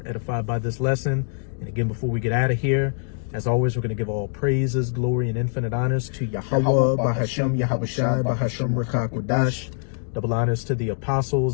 edified by this lesson. And again, before we get out of here, as always, we're going to give all praises, glory, and infinite honors to Yahweh, Bahashem, Yahawashi, Bahashem, Rekakwadash. Double honors to the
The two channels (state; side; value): silent; right; digital silence